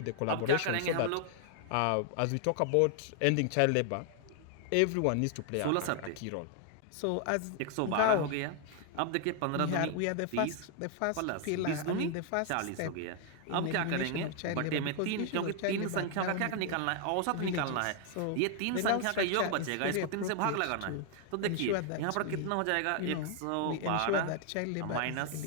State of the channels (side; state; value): both; different; correlation 0.00